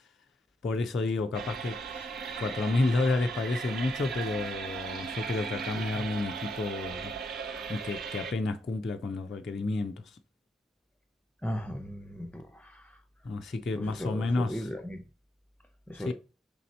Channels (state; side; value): normal; both; correlation 0.79